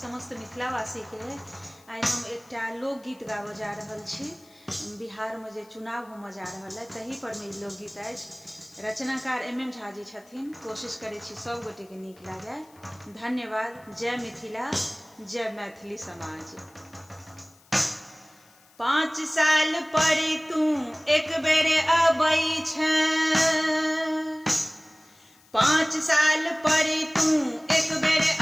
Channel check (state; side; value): noise; left; hiss, 28 dB below the sound